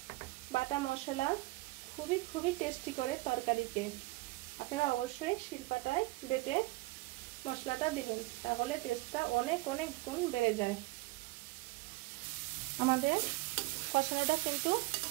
বাটা মশলা খুবই টেস্টি করে তরকারিতে। আপনারা অবশ্যই শিলপাটায় বেটে মশলাটা দিবেন, তাহলে টেস্টটা অনেক গুণ বেড়ে যায়। আমাদের কষানোটা কিন্তু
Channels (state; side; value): quieter; left; 21.4 dB